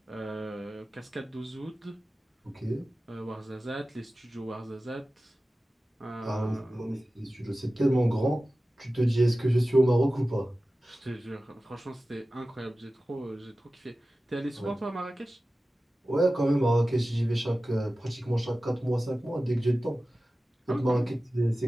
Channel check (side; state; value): both; normal; correlation 0.96